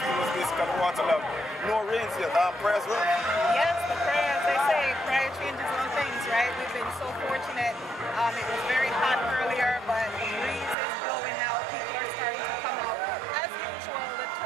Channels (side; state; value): left; drops out; at 10.8 s